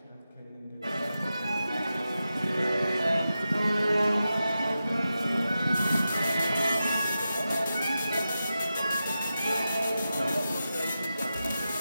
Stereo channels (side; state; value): both; inverted; correlation -0.91